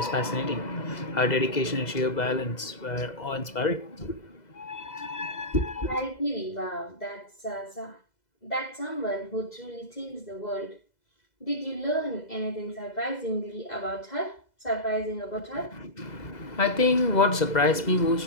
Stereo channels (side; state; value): right; late; 2.0 ms